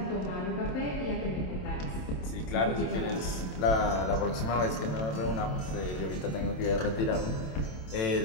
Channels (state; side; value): late; right; 27 ms